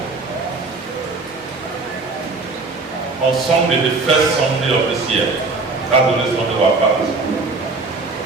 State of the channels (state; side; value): quieter; left; 3.7 dB